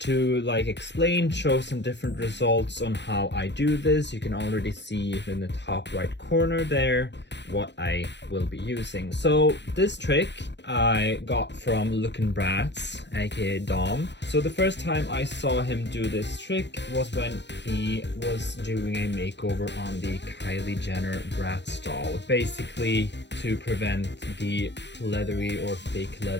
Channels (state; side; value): late; right; 0.51 ms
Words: like explain, show some different results on how I do this. You can already see in the top right corner there what I will be using. So this trick I got from Lookin' Bratz, aka Dom. So the first time I saw him do this trick was when he was doing a makeover on the Kylie Jenner Bratz doll, basically to prevent the leathery or fake